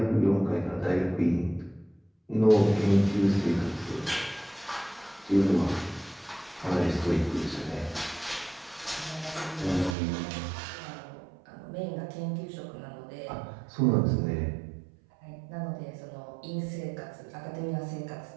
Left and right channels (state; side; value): drops out; left; at 10.0 s